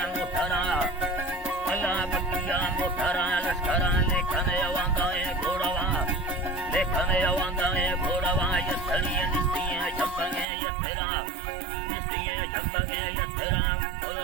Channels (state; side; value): drops out; left; at 10.5 s